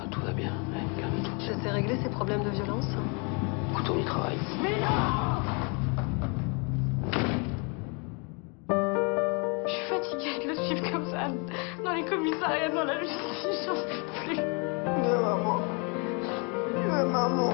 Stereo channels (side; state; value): right; quieter; 33.8 dB